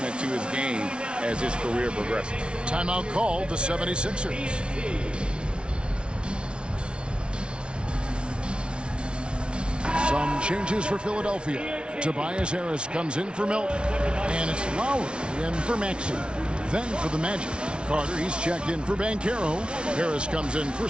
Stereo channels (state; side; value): late; left; 0.057 ms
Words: to his game as his career progresses. Timeout called the 76ers. Some changes for Philadelphia. Tobias Harris comes in for Melton. And it's Lowry in for Maxey. Then for the Magic. Carter, he's checked in for Banchero. Harris comes in for